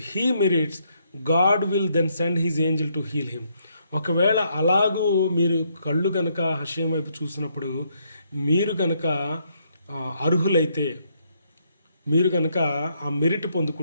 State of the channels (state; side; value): inverted; both; correlation -0.73